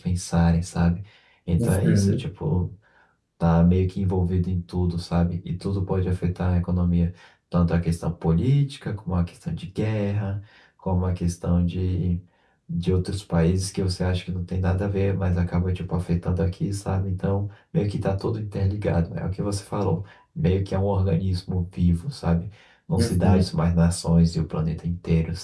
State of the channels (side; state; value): both; identical; correlation 1.00